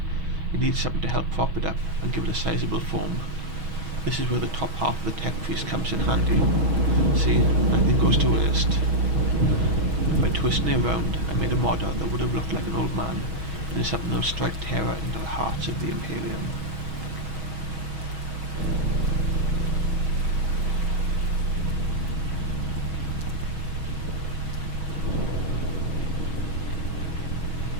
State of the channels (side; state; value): left; late; 6.3 ms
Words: It needs something to help prop it up and give it a sizable form. This is where the top half of the tech priest comes in handy. See, nothing goes to waste. By twisting it around, I made a model that would have looked like an old man, and is something that will strike terror into the hearts of the Imperium.